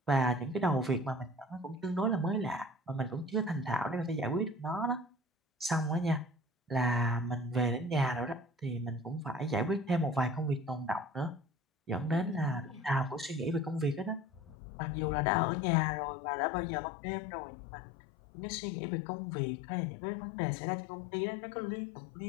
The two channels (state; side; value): drops out; right; at 14.6 s